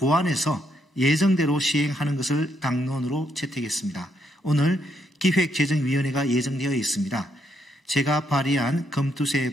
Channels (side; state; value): both; normal; correlation 0.76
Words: 예정대로 시행하는 것을 당론으로 채택했습니다. 오늘 기획재정위원회가 예정되어 있습니다. 제가 발의한